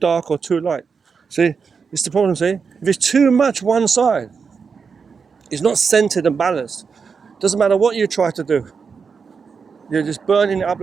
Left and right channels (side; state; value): left; quieter; 5.6 dB